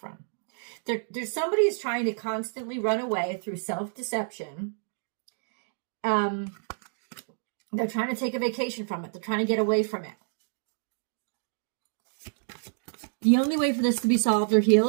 There's somebody who's trying to constantly run away through self-deception. They're trying to take a vacation from it. They're trying to get away from it. The only way for this to be solved or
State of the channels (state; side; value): silent; left; digital silence